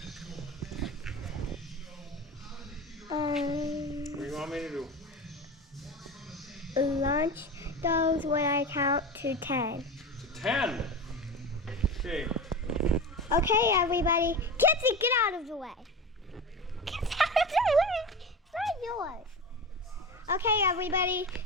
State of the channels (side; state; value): both; normal; correlation 0.27